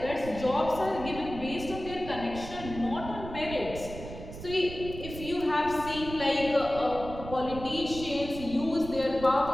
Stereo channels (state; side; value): noise; right; rumble, 11 dB below the sound